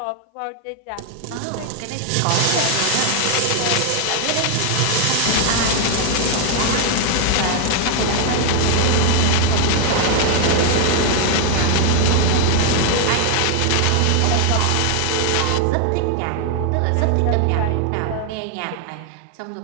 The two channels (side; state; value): both; different; correlation 0.00